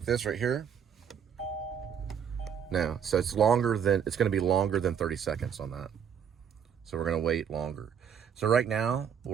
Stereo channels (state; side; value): quieter; left; 7.9 dB